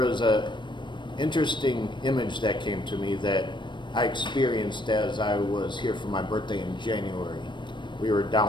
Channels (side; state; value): right; late; 0.22 ms